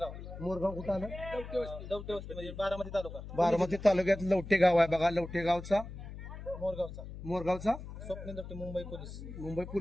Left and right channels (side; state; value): left; noise; hum, 11 dB below the sound